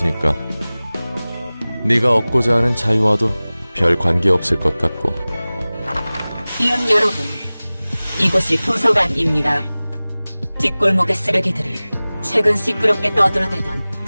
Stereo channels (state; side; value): inverted; both; correlation -0.99